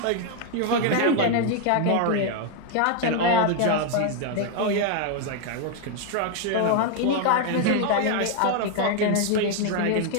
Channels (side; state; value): both; different; correlation 0.01